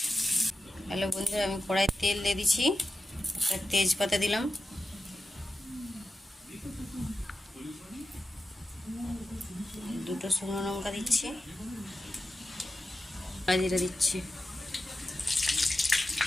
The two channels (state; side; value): normal; both; correlation 0.91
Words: হ্যালো বন্ধুরা, আমি কড়াই তেল দিয়ে দিচ্ছি, একটা তেজপাতা দিলাম, দুটো শুকনো লঙ্কা দিচ্ছি, জিরা দিচ্ছি,